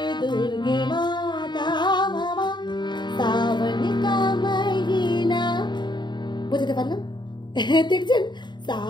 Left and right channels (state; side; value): late; right; 0.22 ms